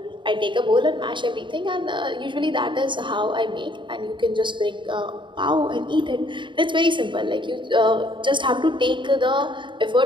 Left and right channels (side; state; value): left; late; 0.23 ms